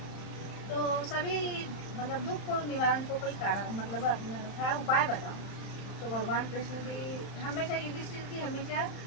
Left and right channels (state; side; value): late; right; 31 ms